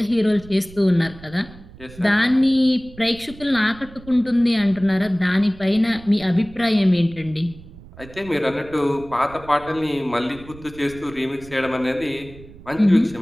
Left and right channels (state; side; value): noise; right; rumble, 19 dB below the sound